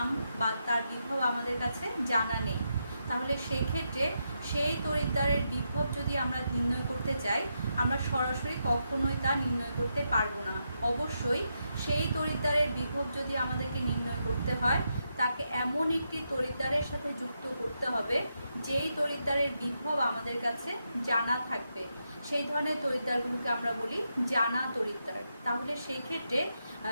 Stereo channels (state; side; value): inverted; both; correlation -0.83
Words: বা তার বিভব আমাদের কাছে জানা নেই, তাহলে সেই ক্ষেত্রে সেই তড়িৎদ্বারের বিভব যদি আমরা নির্ণয় করতে চাই, আমরা সরাসরি কখনোই তা নির্ণয় করতে পারবো না। অবশ্যই সেই তড়িৎদ্বারের বিভব যদি আমাদেরকে নির্ণয় করতে হয়, তাকে এমন একটি তড়িৎদ্বারের সাথে যুক্ত করতে হবে যেই তড়িৎদ্বারের বিভব আমাদের কাছে জানা থাকবে। সেই ধরনের তড়িৎদ্বারগুলোকে আমরা বলি জানা তড়িৎদ্বার। তাহলে সেই ক্ষেত্রে